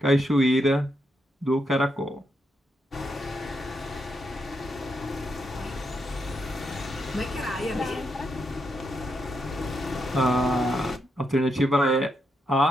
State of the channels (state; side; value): normal; both; correlation 0.81